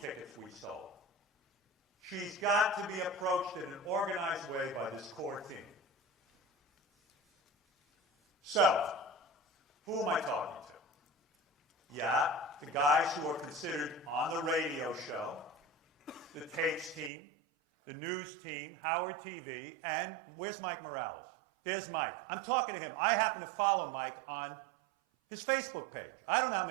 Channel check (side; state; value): left; drops out; at 17.1 s